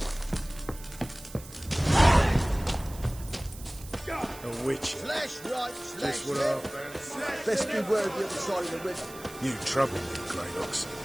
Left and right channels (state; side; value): noise; right; hiss, 17 dB below the sound